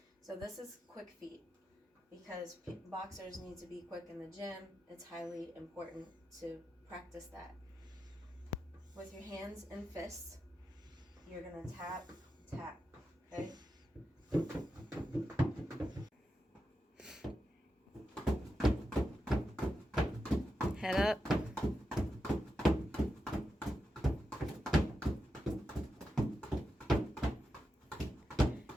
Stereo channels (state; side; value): normal; both; correlation 0.88